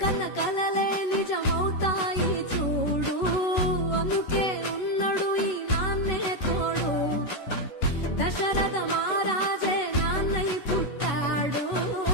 కన్న కలలే నిజమవుతాయి చూడు, అందుకే ఉన్నాడు ఈ నాన్నే తోడు. దశరథ మహారాజే నాన్నై పుట్టాడు,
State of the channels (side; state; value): right; late; 11 ms